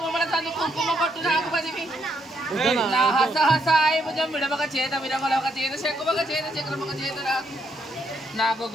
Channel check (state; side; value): normal; both; correlation 0.75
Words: బొమ్మల సందు కుంకుమ పొట్టు నాకు పదివి నా హస హసాయి భుజం విడమక చేత విరమలొక చేత శంకుమక చేత చక్రమక చేత నాకు నాకు